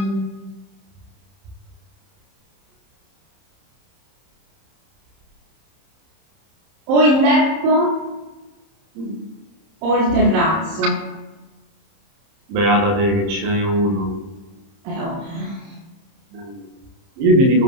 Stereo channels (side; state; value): left; late; 30 ms